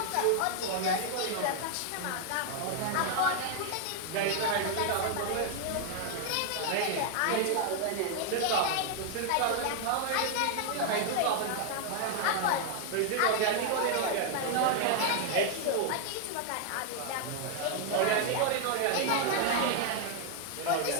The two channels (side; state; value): both; different; correlation 0.00